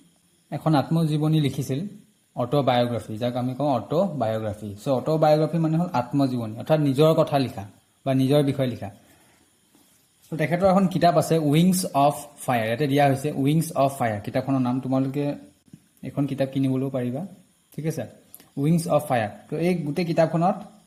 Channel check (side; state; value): both; identical; correlation 1.00